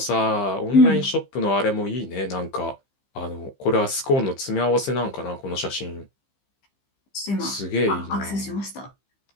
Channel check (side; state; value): right; late; 15 ms